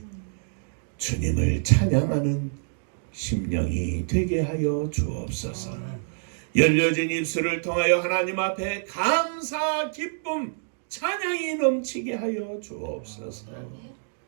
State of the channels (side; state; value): left; silent; digital silence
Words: 주님을 찬양하는 심령이 되게 하여 주옵소서. 열려진 입술을 통하여 하나님 앞에 감사, 기쁨, 찬양이 넘치게 하여 주옵소서.